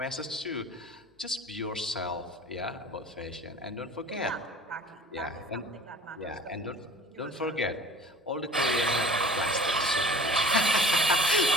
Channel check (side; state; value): both; normal; correlation 0.44